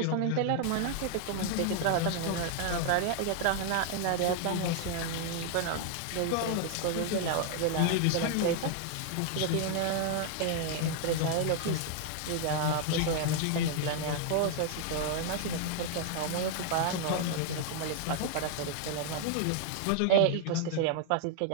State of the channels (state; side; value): different; both; correlation 0.00